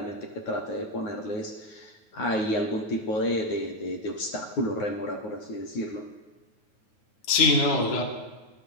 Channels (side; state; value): right; late; 9.4 ms